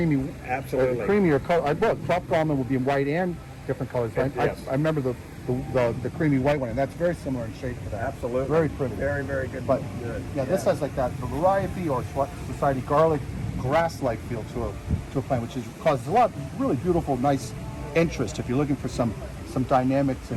Absolutely. creamier color. Tropical almond would be white and different colors. Right? Yes. I remember the creamy white one, and that's very similar in shape to that. Absolutely. Very pretty. Very, very good. But good. this has like that variety or society garlic grass-like feel to a plant, which causes a lot of really beautiful, nice interest if you're looking for some dynamics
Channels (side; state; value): both; identical; correlation 1.00